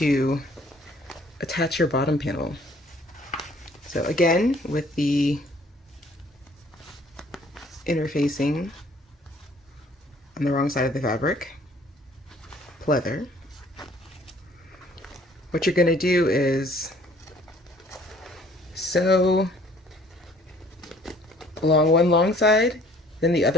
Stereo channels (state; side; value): normal; both; correlation 0.57